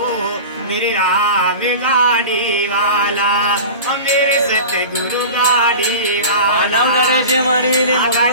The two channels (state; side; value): inverted; both; correlation -0.34